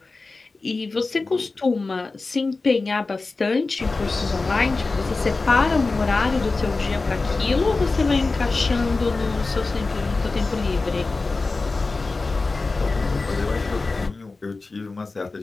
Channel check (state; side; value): quieter; right; 3.7 dB